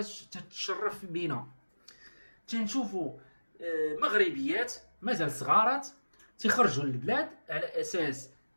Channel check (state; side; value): inverted; both; correlation -1.00